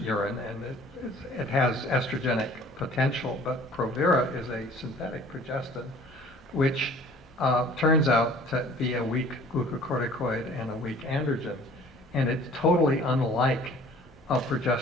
and it has estrogenic potential, but Provera is a synthetic progestin, which turns out to be a weak glucocorticoid and a weak androgen, and it's totally unlike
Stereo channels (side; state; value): both; normal; correlation 0.50